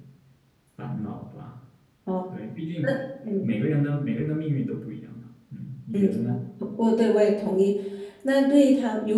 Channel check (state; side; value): identical; both; correlation 1.00